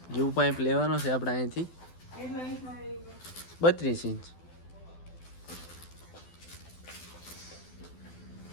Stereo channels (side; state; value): right; late; 12 ms